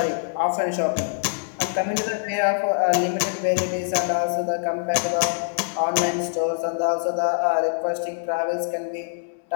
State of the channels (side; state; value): right; silent; 62 dB below the other